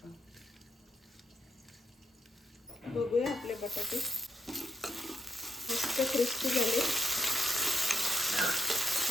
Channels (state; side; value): normal; both; correlation 0.77